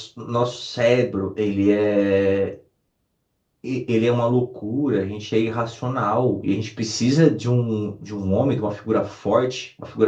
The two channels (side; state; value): both; identical; correlation 1.00